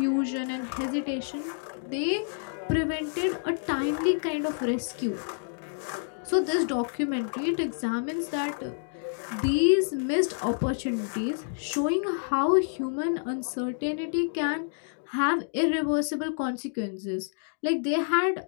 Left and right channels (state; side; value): silent; right; digital silence